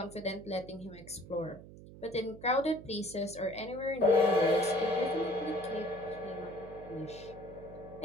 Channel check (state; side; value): noise; right; hum, 16 dB below the sound